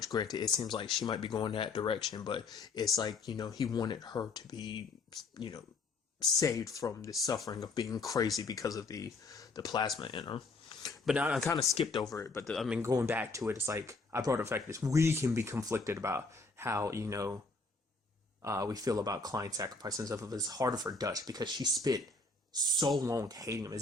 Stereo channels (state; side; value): quieter; right; 3.7 dB